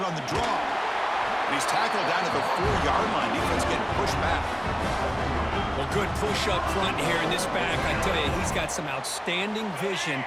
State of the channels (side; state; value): both; identical; correlation 1.00